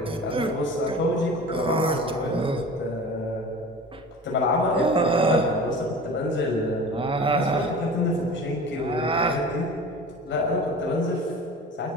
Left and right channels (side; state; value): both; normal; correlation 0.37